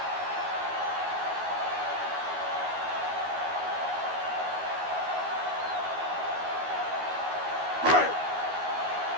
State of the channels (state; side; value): late; left; 12 ms